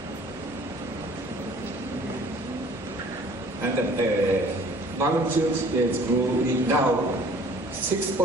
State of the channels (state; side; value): normal; both; correlation 0.53